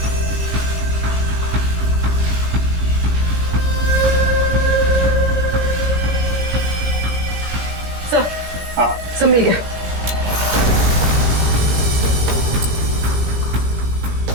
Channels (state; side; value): late; left; 17 ms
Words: सर, सब मिल गया।